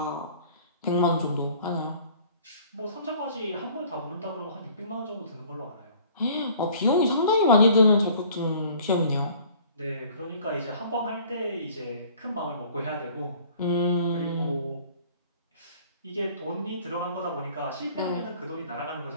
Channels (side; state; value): both; inverted; correlation -0.51